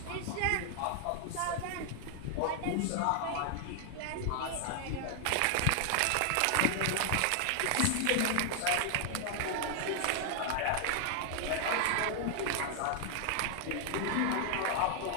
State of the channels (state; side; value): different; both; correlation 0.00